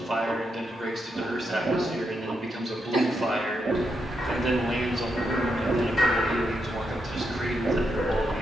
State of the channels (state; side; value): normal; both; correlation 0.83